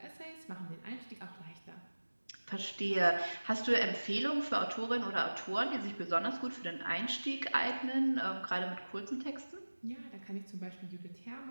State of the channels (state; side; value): inverted; both; correlation -1.00